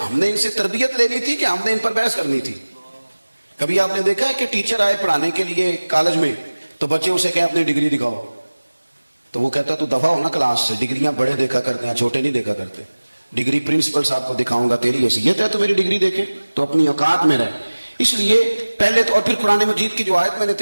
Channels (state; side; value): inverted; both; correlation -1.00